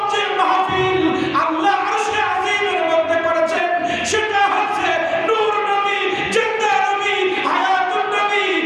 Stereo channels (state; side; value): identical; both; correlation 1.00